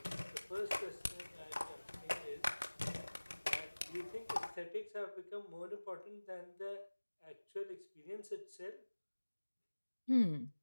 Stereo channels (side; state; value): both; inverted; correlation -1.00